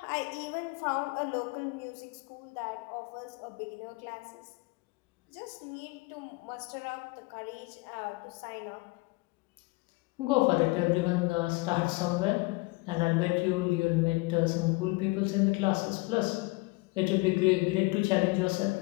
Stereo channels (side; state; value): right; quieter; 24.7 dB